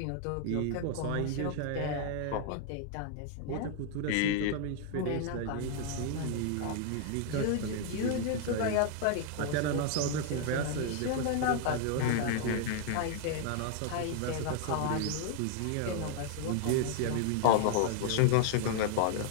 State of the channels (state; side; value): different; both; correlation 0.00